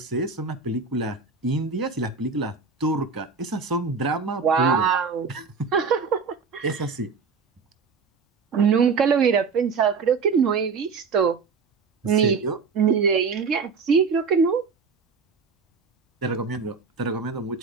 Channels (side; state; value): left; quieter; 5.1 dB